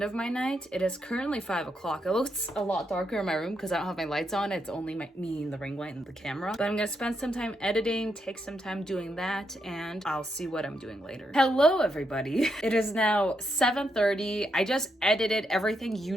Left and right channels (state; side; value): normal; both; correlation 0.81